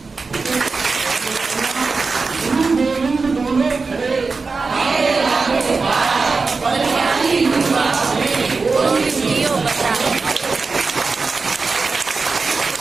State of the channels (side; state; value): left; quieter; 4.3 dB